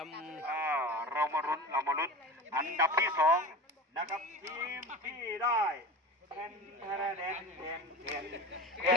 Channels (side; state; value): both; normal; correlation 0.33